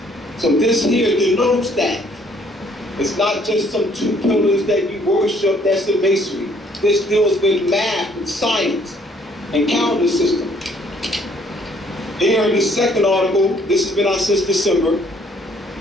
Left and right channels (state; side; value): normal; both; correlation 0.63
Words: So this here denotes that. It's not just some 2 pillars that you worship, that's the masonry. This deals with math and science and calendar system. Here in the second article, this has been out since December.